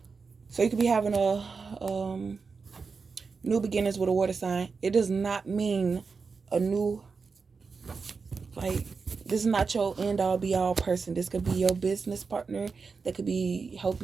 So you could be having a new beginnings with a water sign. It does not mean a new, like, this is not your end all be all person. This could be your business partner that could be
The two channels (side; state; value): left; quieter; 4.9 dB